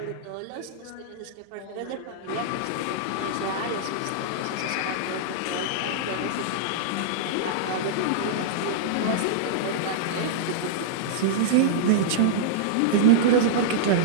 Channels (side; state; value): both; different; correlation -0.02